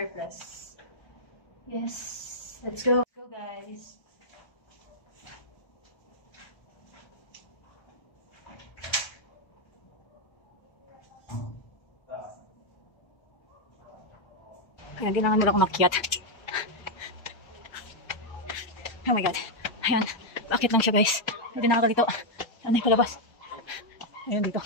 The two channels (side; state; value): right; late; 1.3 ms